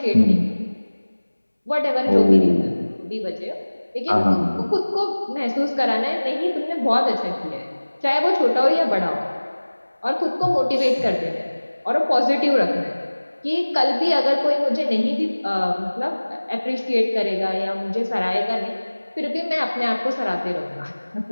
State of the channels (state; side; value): inverted; both; correlation -1.00